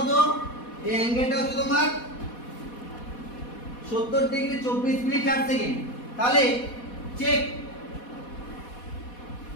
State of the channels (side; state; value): right; late; 4.1 ms